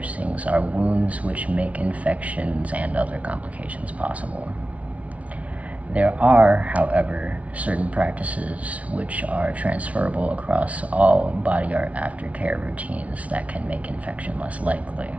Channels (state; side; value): late; left; 0.066 ms